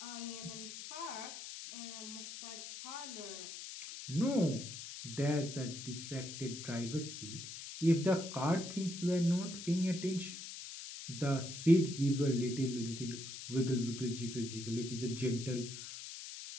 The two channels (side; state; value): left; noise; hiss, 10 dB below the sound